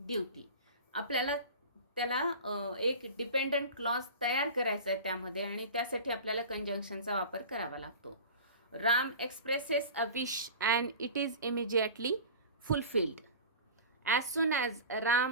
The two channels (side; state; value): both; inverted; correlation -0.35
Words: आपल्याला त्याला एक डिपेंडंट क्लॉज तयार करायचा आहे त्यामध्ये, आणि त्यासाठी आपल्याला कंजंक्शनचा वापर करावा लागतो. Ram expresses a wish and it is immediately fulfilled. As soon as